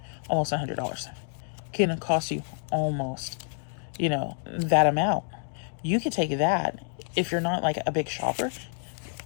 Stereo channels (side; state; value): right; silent; digital silence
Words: almost $100. Can cost you almost, you know, that amount. You could take that if you're not like a big shopper.